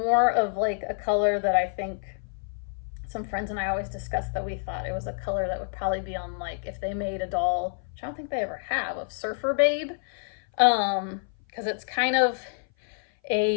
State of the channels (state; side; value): silent; right; 57 dB below the other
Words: of like a color that I think some friends and I always discussed that we thought it was a color that would probably be on, like, if they made a doll, which I don't think they ever have, of Surfer Babe, because it's kind of